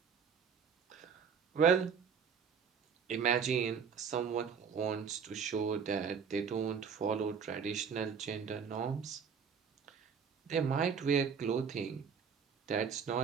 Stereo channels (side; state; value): left; quieter; 6.6 dB